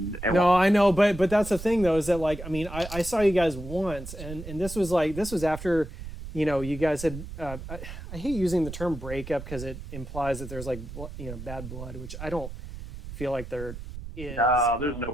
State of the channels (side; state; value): right; noise; rumble, 11 dB below the sound